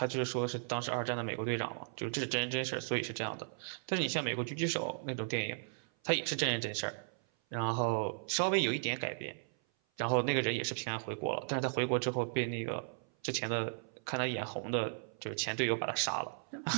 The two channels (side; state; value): left; silent; 54 dB below the other